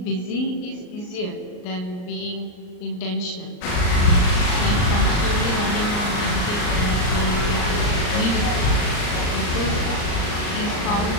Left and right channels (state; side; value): late; right; 39 ms